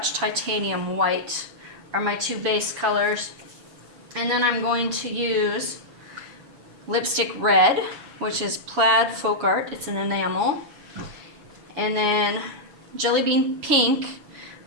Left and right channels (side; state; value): left; late; 7.2 ms